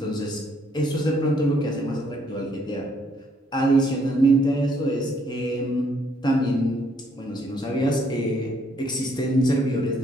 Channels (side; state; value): both; normal; correlation 0.68